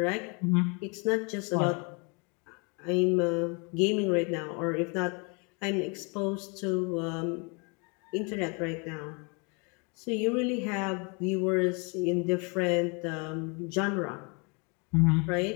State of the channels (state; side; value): quieter; right; 32.9 dB